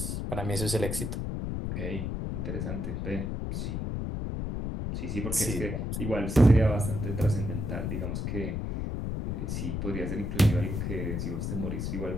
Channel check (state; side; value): noise; left; rumble, 2 dB below the sound